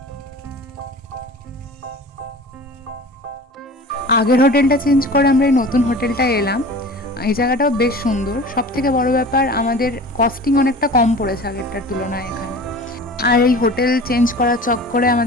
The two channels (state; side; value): normal; both; correlation 0.39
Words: আগের হোটেলটা চেঞ্জ করে আমরা এই নতুন হোটেলটায় এলাম। এই জায়গাটাও বেশ সুন্দর, সব থেকে বড় ব্যাপার আমাদের কস্টিং অনেকটা কম পড়েছে আগেরটার তুলনায় এখানে। আর এই হোটেল চেঞ্জ করার চক্করে